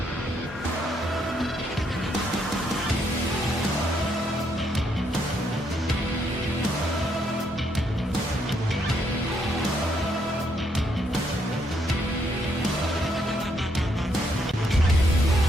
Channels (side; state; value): both; normal; correlation 0.74